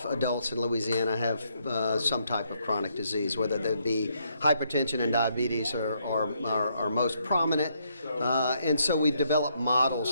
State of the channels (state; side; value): inverted; both; correlation -0.74